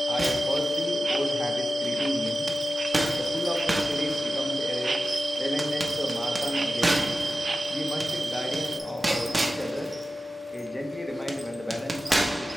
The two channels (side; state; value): both; normal; correlation 0.92